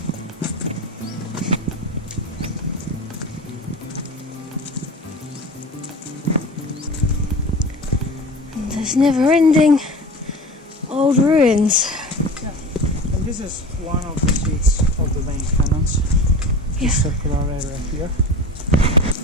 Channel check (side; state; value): both; normal; correlation 0.35